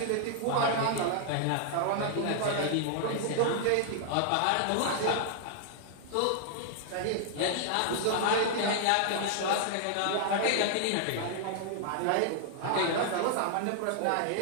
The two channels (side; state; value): both; different; correlation -0.01